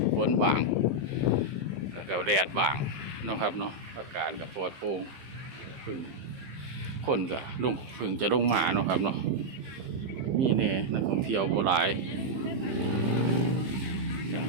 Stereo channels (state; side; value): late; left; 15 ms